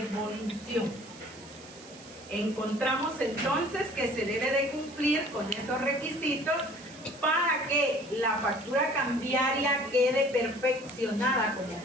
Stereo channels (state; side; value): noise; right; hiss, 20 dB below the sound